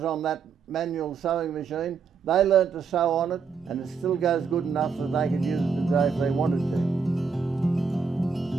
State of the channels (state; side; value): quieter; left; 5.6 dB